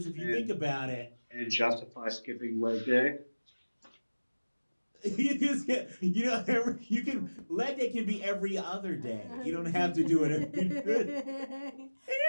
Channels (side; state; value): both; inverted; correlation -1.00